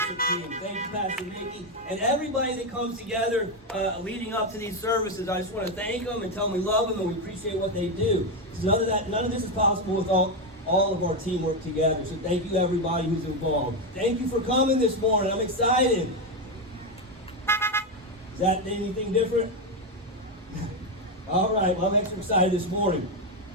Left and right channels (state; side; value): normal; both; correlation 0.09